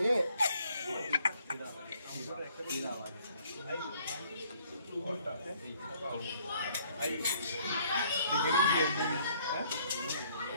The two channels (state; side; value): inverted; both; correlation -0.63